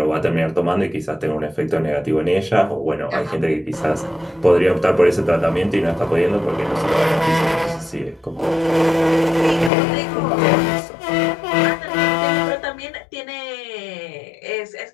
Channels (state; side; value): drops out; right; at 9.7 s